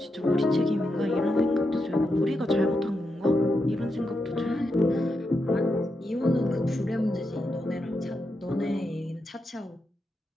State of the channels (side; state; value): both; normal; correlation 0.85